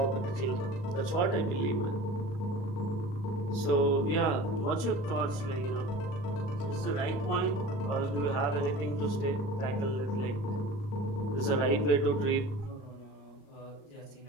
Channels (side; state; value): right; late; 37 ms